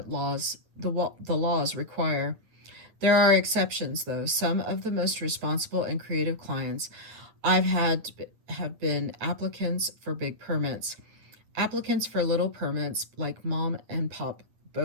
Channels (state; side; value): late; left; 9.2 ms